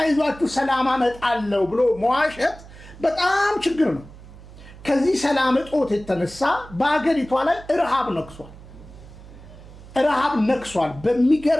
ሰላም አመጣለሁ ብሎ መዋሸት በጣም ችግር ነው። ከዚህ ሰላም እጦት የተነሳ በሀገሪቷ ላይ ረሃብ ነክሷል።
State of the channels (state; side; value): noise; right; hum, 19 dB below the sound